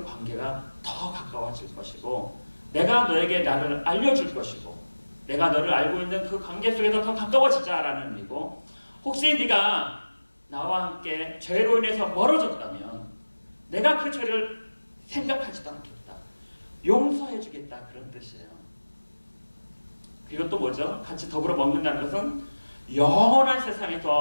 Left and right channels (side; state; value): both; inverted; correlation -1.00